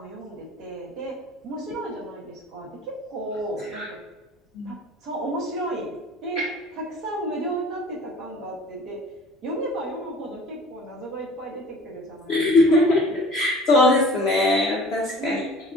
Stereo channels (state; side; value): normal; both; correlation 0.45